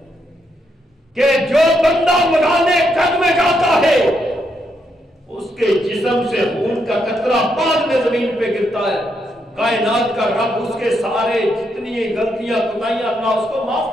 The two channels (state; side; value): normal; both; correlation 0.78